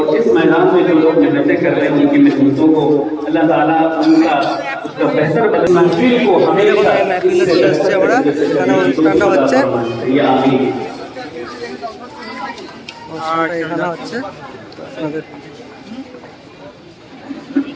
অনুষ্ঠানটা হচ্ছে এখানে হচ্ছে, আপনাদের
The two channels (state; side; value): identical; both; correlation 1.00